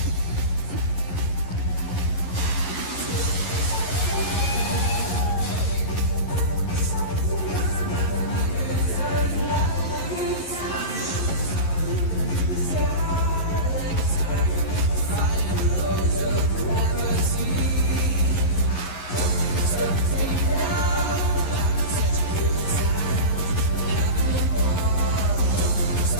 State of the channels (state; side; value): late; right; 11 ms